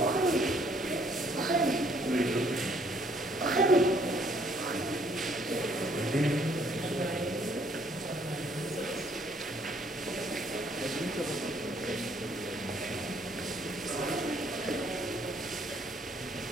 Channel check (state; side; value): normal; both; correlation 0.65